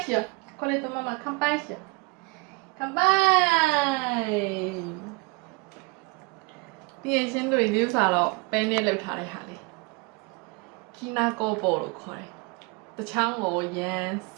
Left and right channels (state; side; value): quieter; left; 26.7 dB